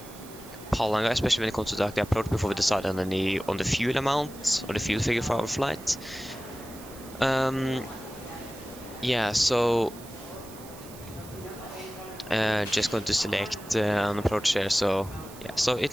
Palanga, especially when it comes to the approach, before we decide on the fuel amount or the fuel figure for our flight. Yeah, so just going to select an approach here. So yeah, so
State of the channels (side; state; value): right; noise; hiss, 18 dB below the sound